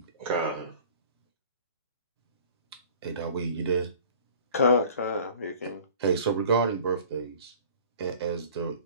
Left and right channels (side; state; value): both; inverted; correlation -0.46